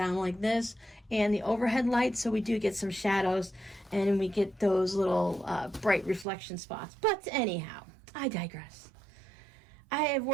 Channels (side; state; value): left; drops out; at 6.2 s